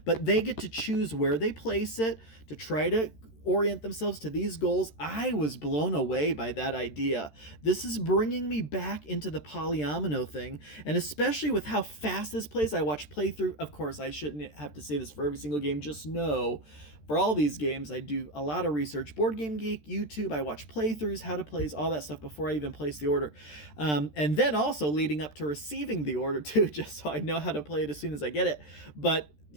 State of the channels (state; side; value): late; right; 13 ms